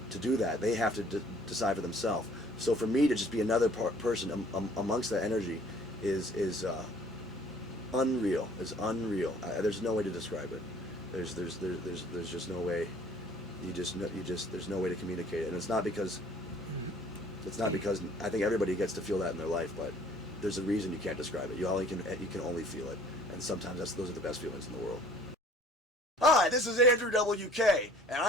to do that. They have to decide for themselves. So for me to just be another person amongst that energy is unreal. Is unreal. There's no way to describe it. There's just no way. There's no way to communicate it. And it's not because I think everybody gets to feel that in their life, but there's a reason you can't describe it. You can only feel it, and sometimes those are the best feelings in the world. Hi, this is Andrew WK, and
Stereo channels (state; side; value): normal; both; correlation 0.54